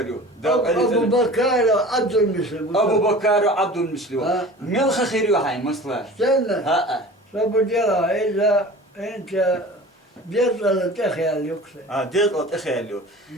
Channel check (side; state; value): both; normal; correlation 0.40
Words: Abu Bakar Abdülmüslim. أبو بكر عبد المسلم ملخ خير وحين مصلح Sen ها Sabu dira إذا أنت جزء تخيل يكسر. ديت أتخيلوا